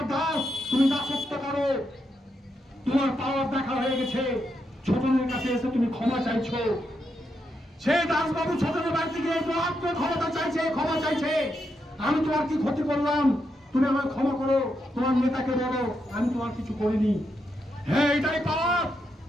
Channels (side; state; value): both; normal; correlation 0.82